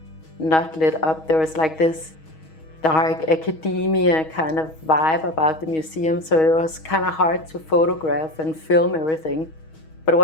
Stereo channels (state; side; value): late; right; 6.3 ms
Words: not lit up. There was like this dark academia kind of vibe about the museum, so it was kind of hard to photograph and film everything. But